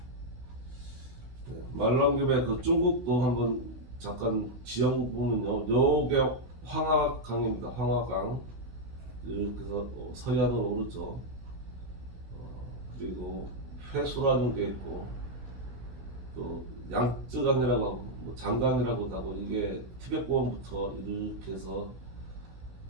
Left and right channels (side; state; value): left; late; 16 ms